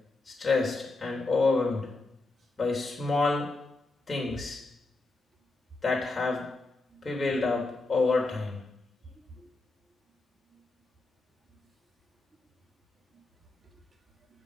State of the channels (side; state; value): right; quieter; 3.3 dB